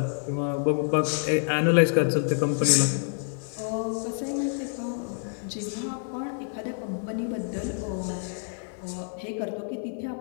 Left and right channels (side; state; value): right; silent; digital silence